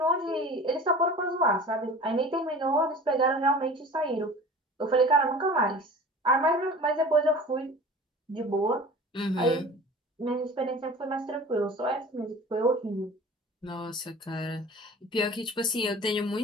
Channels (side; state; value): both; normal; correlation 0.41